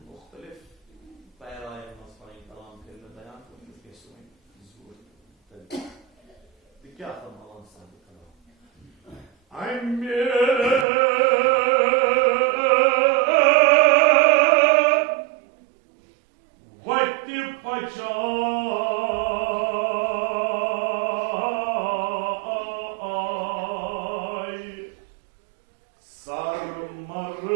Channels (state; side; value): drops out; left; at 10.9 s